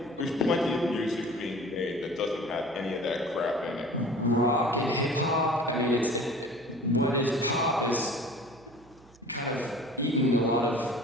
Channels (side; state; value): right; noise; hum, 27 dB below the sound